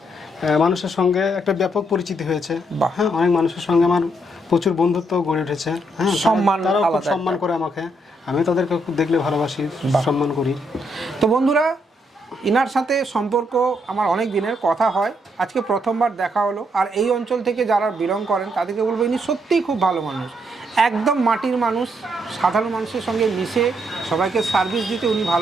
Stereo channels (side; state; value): both; normal; correlation 0.75